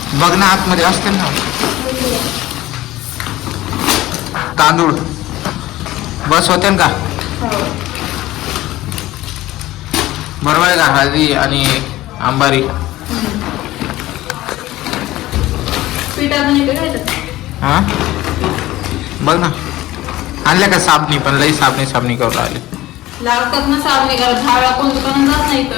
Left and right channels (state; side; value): quieter; right; 16.5 dB